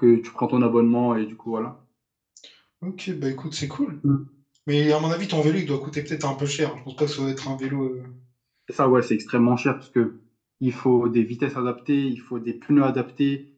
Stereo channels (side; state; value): both; identical; correlation 1.00